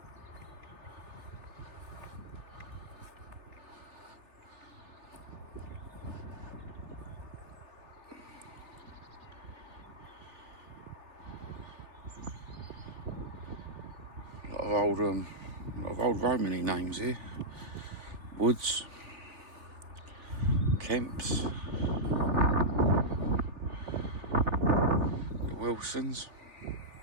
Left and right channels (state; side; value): late; left; 3.3 ms